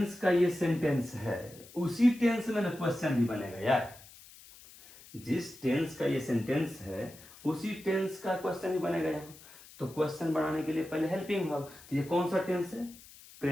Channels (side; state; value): left; noise; hiss, 21 dB below the sound